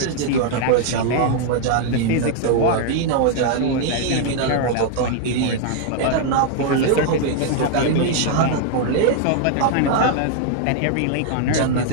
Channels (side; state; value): both; different; correlation 0.00